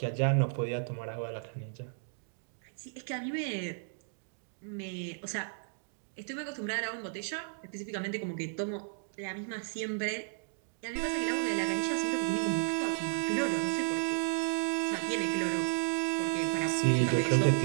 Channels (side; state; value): left; silent; digital silence